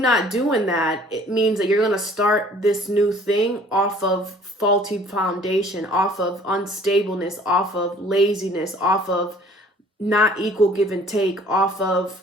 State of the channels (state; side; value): normal; both; correlation 0.54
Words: doing that, it means that you're going to start this new thing off of faulty foundation, off of unstableness, off of laziness, off of not equal give and take, off